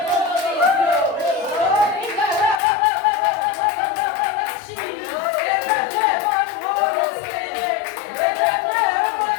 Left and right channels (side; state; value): right; drops out; at 2.6 s